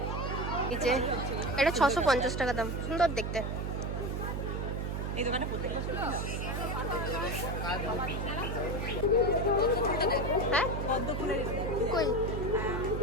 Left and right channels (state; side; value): noise; right; hum, 2 dB below the sound